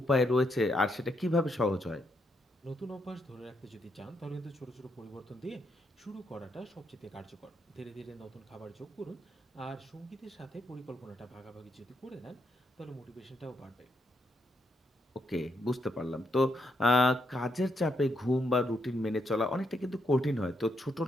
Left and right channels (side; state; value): both; normal; correlation 0.78